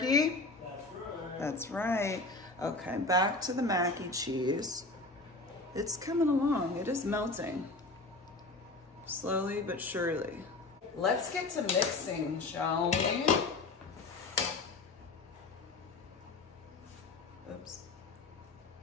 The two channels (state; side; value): quieter; right; 3.3 dB